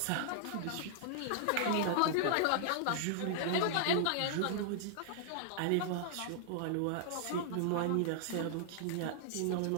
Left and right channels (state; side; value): different; both; correlation -0.01